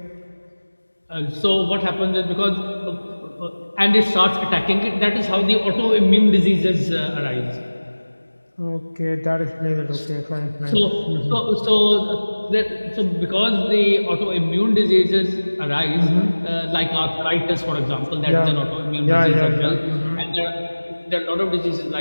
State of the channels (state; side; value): inverted; both; correlation -1.00